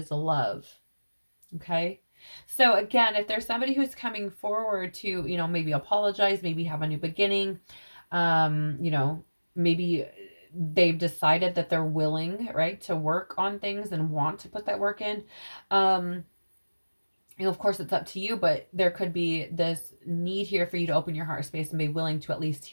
love. Okay. So again, if there's somebody who's coming forward to, maybe apologize, maybe have a new beginning, maybe they've decided that they're willing, right, to work on things and want to put that work in. Um, of course, it's up to you, but there could be this need here for you to open your heart space and be willing to at least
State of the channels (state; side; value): inverted; both; correlation -1.00